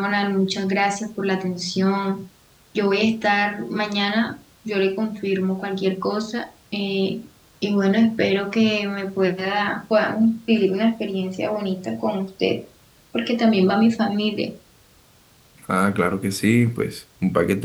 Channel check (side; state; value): both; identical; correlation 1.00